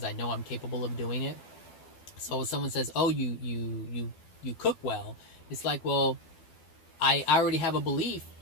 I know I'm capable of doing it. So if someone says, "Oh, you cook well," it's like, well, I already have a belief.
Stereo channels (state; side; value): late; right; 12 ms